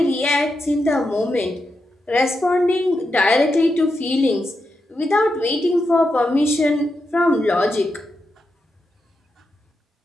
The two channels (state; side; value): normal; both; correlation 0.86